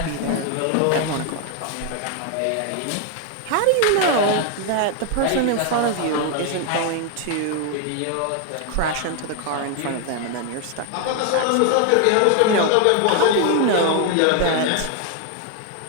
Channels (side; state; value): both; different; correlation 0.00